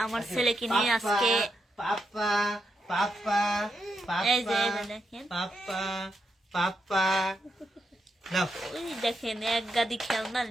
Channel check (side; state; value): both; normal; correlation 0.82